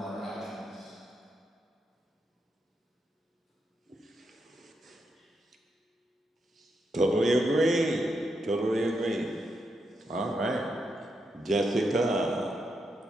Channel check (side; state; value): both; normal; correlation 0.83